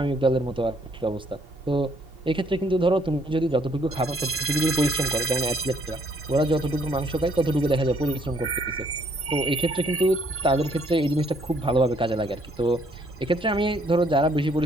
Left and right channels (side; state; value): both; normal; correlation 0.66